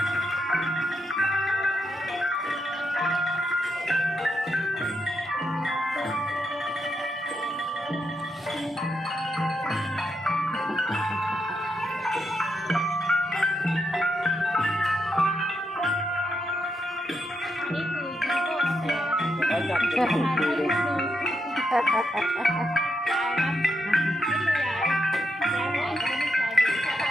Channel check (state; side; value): normal; both; correlation 0.82